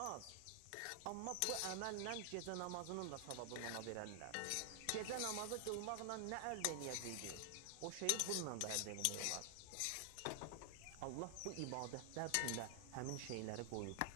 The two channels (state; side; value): different; both; correlation 0.00